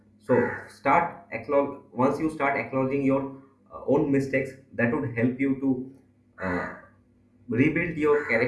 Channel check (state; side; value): identical; both; correlation 1.00